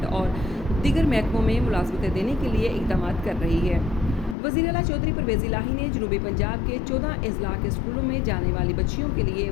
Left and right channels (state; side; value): drops out; right; at 4.4 s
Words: और दीगर महकमों में मुलाजमतें देने के लिए इक़दाम कर रही है। वज़ीर आला चौधरी परवेज़ इलाही ने जनूबी पंजाब के 14 अजला के स्कूलों में जाने वाली बच्चियों के लिए